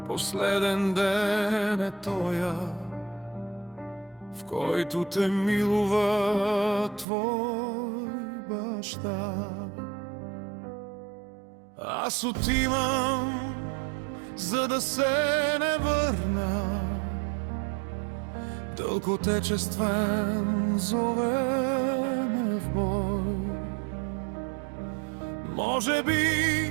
последен ден е тоя, в който те милува твой баща. Аз отивам, за да се не върна, дълг отечествен зове ме в бой. Може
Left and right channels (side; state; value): left; drops out; at 7.1 s